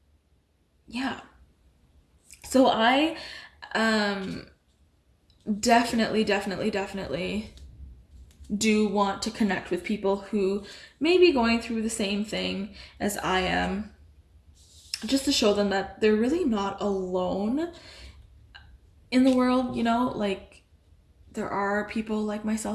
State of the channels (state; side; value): identical; both; correlation 1.00